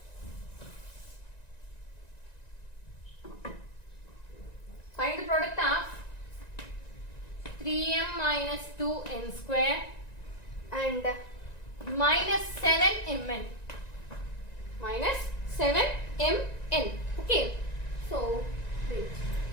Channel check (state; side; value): late; right; 1.9 ms